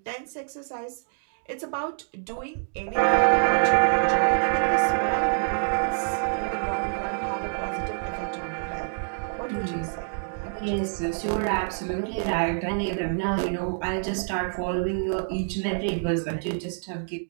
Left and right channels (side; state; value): left; silent; digital silence